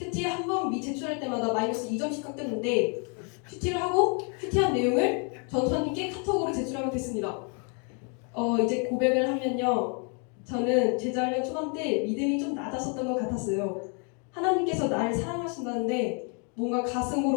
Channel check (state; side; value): quieter; right; 37.8 dB